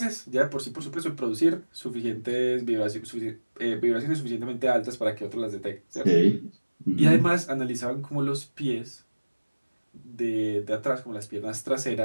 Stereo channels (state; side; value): inverted; both; correlation -1.00